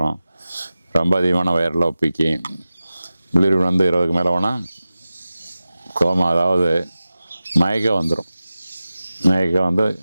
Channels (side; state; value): both; inverted; correlation -0.95